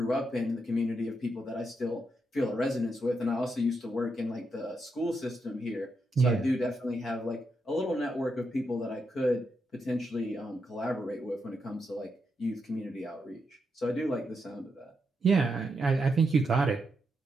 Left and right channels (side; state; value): both; normal; correlation 0.83